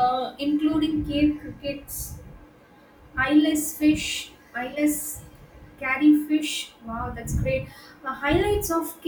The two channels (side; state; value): both; identical; correlation 1.00